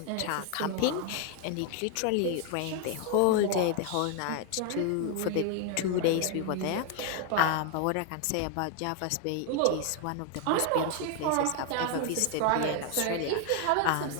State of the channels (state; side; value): different; both; correlation 0.00